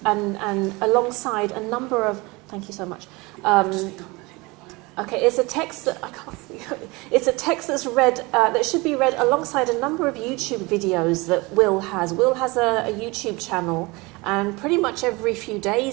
and alongside a number of, thank you so much. Okay, it's a text that, I can't see, it's a text that's read, that should be read alongside a number of YouTube videos that Will has. Will has a YouTube channel, and pretty much every few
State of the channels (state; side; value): quieter; left; 24.4 dB